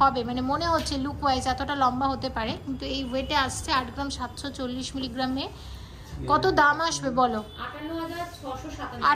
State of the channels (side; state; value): both; identical; correlation 1.00